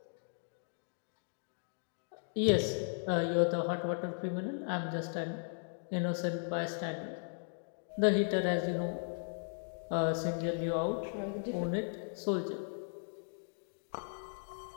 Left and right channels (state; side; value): silent; right; digital silence